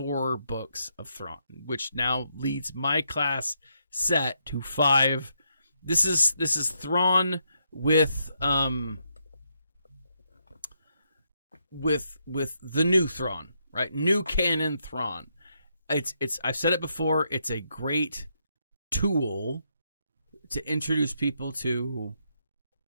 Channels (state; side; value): inverted; both; correlation -0.78